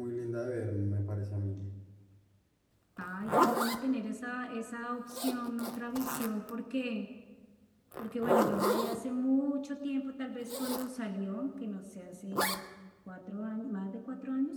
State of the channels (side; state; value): both; identical; correlation 1.00